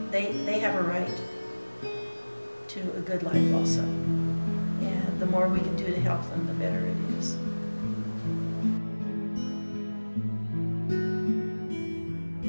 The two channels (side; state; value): both; inverted; correlation -1.00